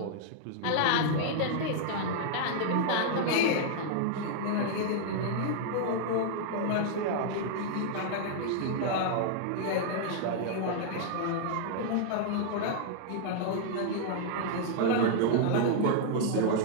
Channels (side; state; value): both; different; correlation -0.01